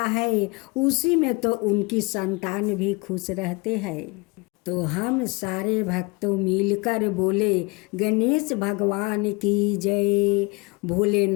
है। उसी में तो उनकी संतान भी खुश रहते हैं। तो हम सारे भक्तों मिलकर बोले गणेश भगवान की जय,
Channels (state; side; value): quieter; right; 27.5 dB